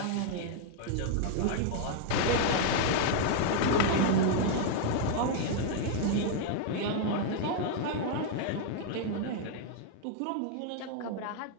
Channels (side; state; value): both; different; correlation 0.00